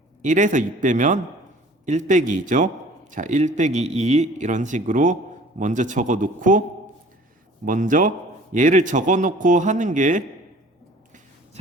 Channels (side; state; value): both; normal; correlation 0.49